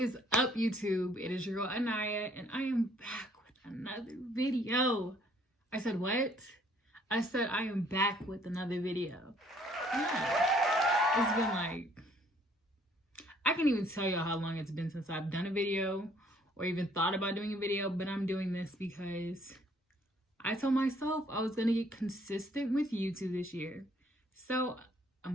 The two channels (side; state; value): both; normal; correlation 0.62